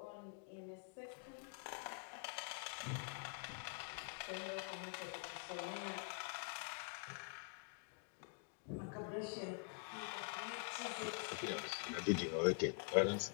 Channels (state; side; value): quieter; right; 36.5 dB